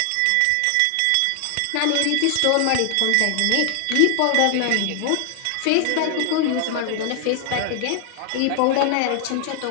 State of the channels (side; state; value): both; different; correlation 0.00